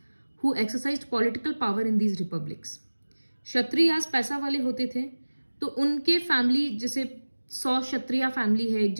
who exercised political power in these republics. Kshatriya पैसा वाले होते थे, तो उनके फैमिली, जैसे 100 क्षत्रिय फैमिली है एक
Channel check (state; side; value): inverted; both; correlation -1.00